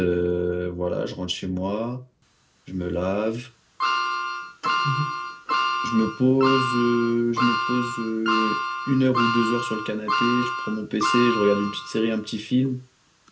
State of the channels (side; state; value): both; identical; correlation 1.00